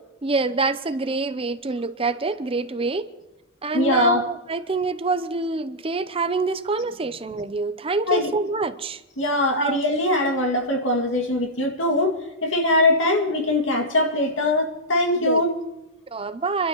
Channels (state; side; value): normal; both; correlation -0.06